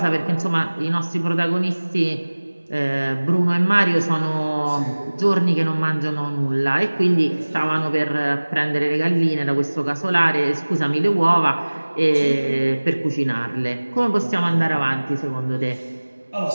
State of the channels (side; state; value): both; inverted; correlation -1.00